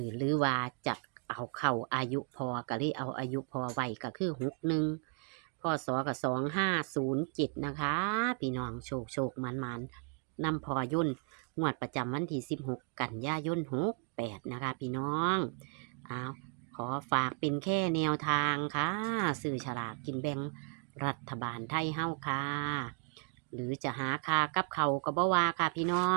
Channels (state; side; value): quieter; left; 34.2 dB